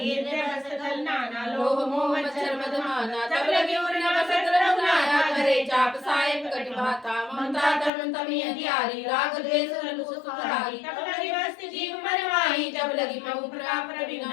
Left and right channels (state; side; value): drops out; right; at 7.9 s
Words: हृदय नाना लोभ मोह मच्छर मदमाना तब लगी उर्न वसत रघुनाया करे चाप सायक कटि भाता ममता तरुण तमी अधियारी राग द्वेष रघु सुखधारी तब लगी वस्त जीव मरवाई जब लगी महु प्रताप